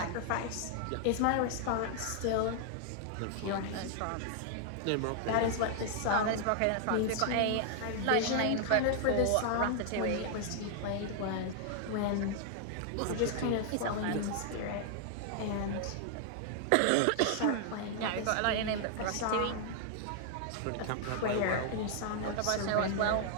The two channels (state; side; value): different; both; correlation 0.00